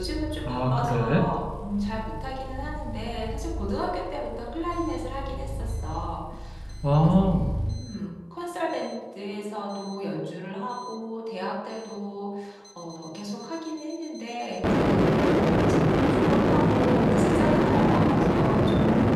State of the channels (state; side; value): identical; both; correlation 1.00